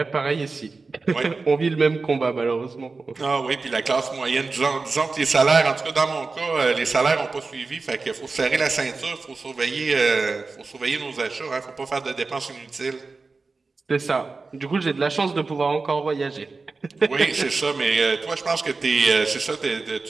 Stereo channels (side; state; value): left; quieter; 4.0 dB